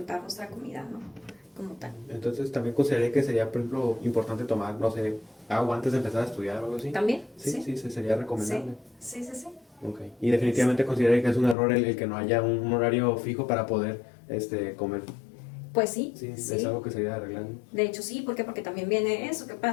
nuestra comida, ¿no? Como tal. Entonces también consideraría que sería, por ejemplo, importante tomar, no sé, agua antes de empezar a estudiar o algo así. ¿También? Sí, sí, sería recomendable. Sí, sí, sí. Okay. Y definitivamente consideraría que es un error el que no haya un horario fijo para poder comer. Pues sí, Sí, sí. es algo que sería arreglando. De hecho, sí, ¿por qué? Porque también viene eso, ¿qué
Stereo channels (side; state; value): right; drops out; at 11.6 s